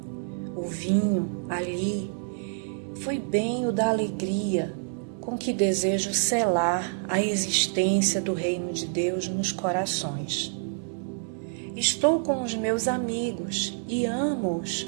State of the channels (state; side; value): silent; left; digital silence